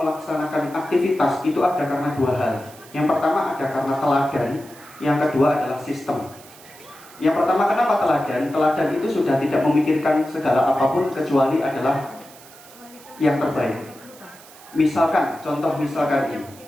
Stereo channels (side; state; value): right; noise; hiss, 21 dB below the sound